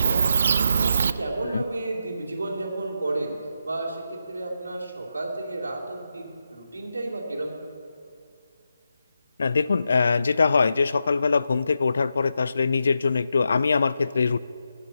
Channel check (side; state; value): both; inverted; correlation -0.86